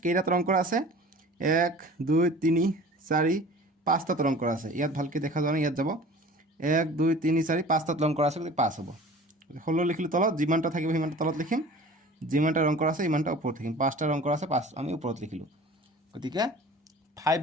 কেইটাত ৰং কৰা আছে? 1 2 3 4 5টাত ৰং কৰা আছে। ইয়াত ভালকৈ দেখা যোৱা নাই, ইয়াত যাব 1 2 3 4 5টাত ৰং কৰা আছে, গতিকে 5 হ'ব। 16 লিখিলোঁ তলত, যিমানটা থাকিব সিমানটা তলত লিখিম, যিমানটা ৰং কৰা আছে ইমানটা ওপৰত লিখিম। 5টা ৰং কৰা আছে, 5 আমি ওপৰত লিখিলোঁ। গতিকে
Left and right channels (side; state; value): both; normal; correlation 0.43